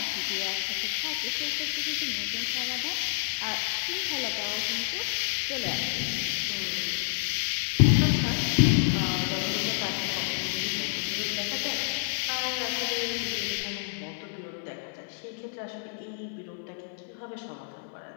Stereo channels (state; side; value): silent; right; digital silence